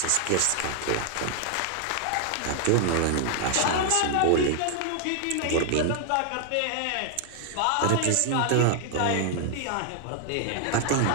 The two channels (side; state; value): both; different; correlation 0.00